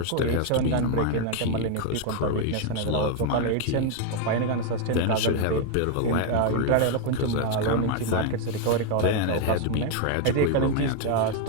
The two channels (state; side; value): different; both; correlation 0.00